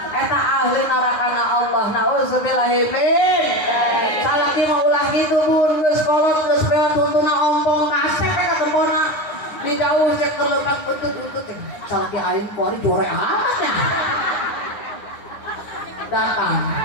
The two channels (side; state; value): right; late; 9.7 ms